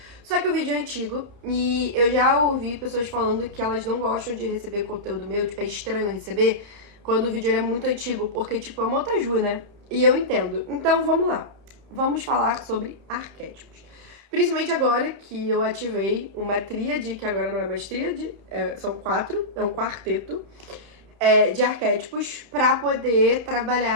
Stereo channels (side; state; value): left; late; 30 ms